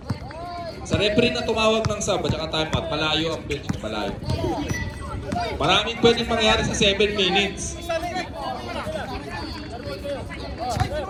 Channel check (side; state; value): both; identical; correlation 1.00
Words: Sa referee na tumawag ng sub at saka timeout, malayo ang bench. Malayo. Maraming pwedeng mangyari sa 7 minutes.